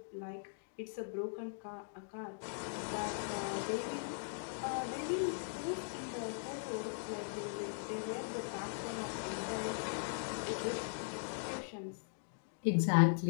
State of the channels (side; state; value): right; silent; digital silence